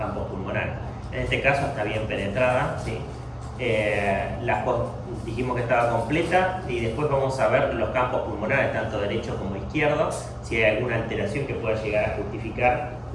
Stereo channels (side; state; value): both; identical; correlation 1.00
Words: pulmonares. En este caso está bien penetrada, ¿sí? Dijimos que estaba completa y después vamos a ver los campos pulmonares, tanto derecho como izquierdo, si hay alguna alteración que pueda llegar a justificar